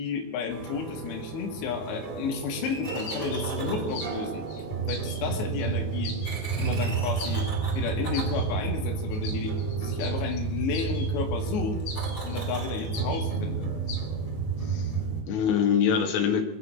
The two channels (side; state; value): right; late; 19 ms